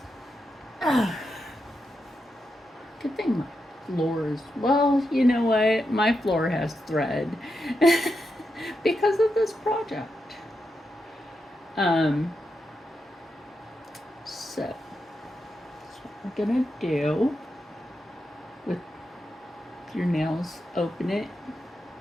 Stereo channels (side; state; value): both; normal; correlation 0.86